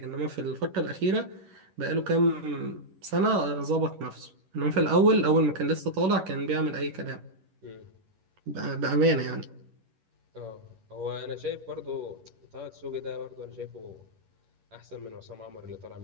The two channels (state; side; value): late; left; 11 ms